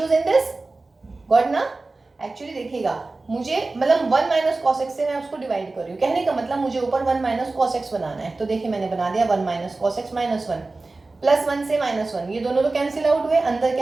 in this, got ना। एक्चुअली देखिएगा मुझे मतलब 1 माइनस cos x से मैं उसको डिवाइड कर रही हूँ, कहने का मतलब मुझे ऊपर 1 माइनस cos x बनाना है। तो देखिए मैंने बना दिया 1 minus cos x minus 1 plus 1 से माइनस 1, ये दोनों तो कैंसिल आउट हुए, अंदर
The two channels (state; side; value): quieter; left; 3.4 dB